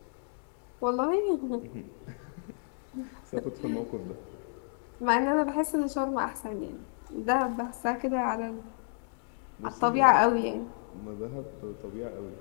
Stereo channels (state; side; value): silent; right; digital silence